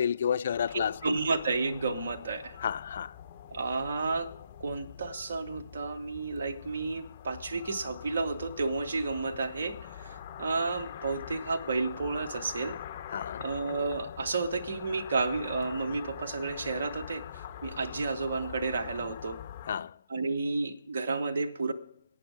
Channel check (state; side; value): inverted; both; correlation -0.79